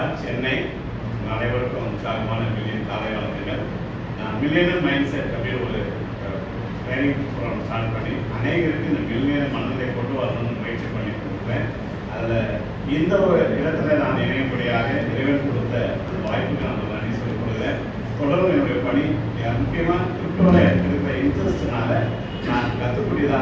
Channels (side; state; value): both; identical; correlation 1.00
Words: சென்னை. அனைவருக்கும் உற்சாகமான மில்லியன் காலை வணக்கங்கள். நான் மில்லியனர் மைண்ட் செட் அப்படின்னு ஒரு ட்ரைனிங் ப்ரோக்ராம் ஸ்டார்ட் பண்ணி அநேகருக்கு இந்த மில்லியனர் மனநிலை கொண்டு வரணும்னு முயற்சி பண்ணி கொடுக்குறேன். அதில் இந்த ஒரு இடத்துல நான் இணையப்படியாக இறைவன் கொடுத்த அந்த வாய்ப்புக்கு நான் நன்றி சொல்லிக் கொடுக்குறேன். தொடர்ந்து என்னுடைய பணி முக்கியமாக கிரிப்டோவில் இருக்கிற இன்ட்ரெஸ்ட்னால நான்